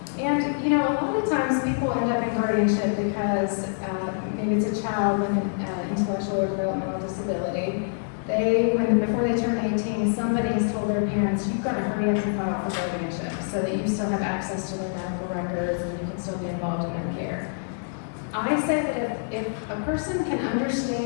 And a lot of times people end up in guardianship because maybe it's a child with an intellectual or developmental disability. Before they turn 18, somebody has told their parents, you've got to hurry up and file for guardianship so that you still have access to their medical records and you can still be involved in their care. I say that if a person can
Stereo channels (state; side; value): silent; right; digital silence